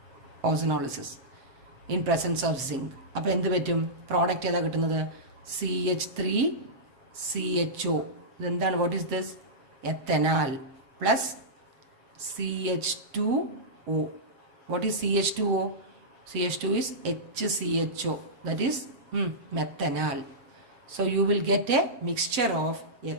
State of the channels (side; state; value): left; late; 7.7 ms